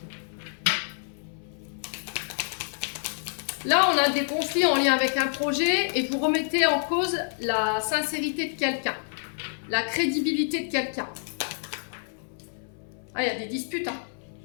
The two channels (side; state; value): right; silent; 60 dB below the other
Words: Là, on a des conflits en lien avec un projet et vous remettez en cause la sincérité de quelqu'un, la crédibilité de quelqu'un. Ah, il y a des disputes, hein.